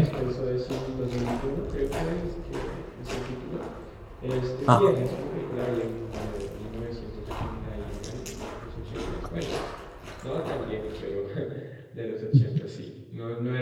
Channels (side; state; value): both; identical; correlation 1.00